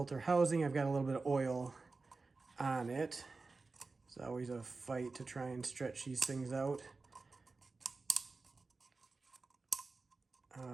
housing. I've got a little bit of oil on it. It's always a fight to try and stretch these things out.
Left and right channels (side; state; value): left; quieter; 3.9 dB